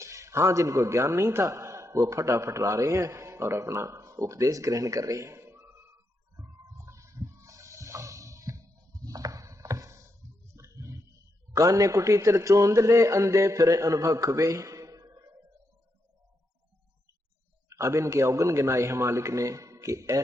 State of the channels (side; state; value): both; normal; correlation 0.83